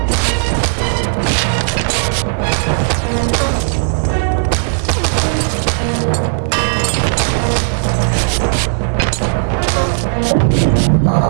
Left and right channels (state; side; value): silent; left; digital silence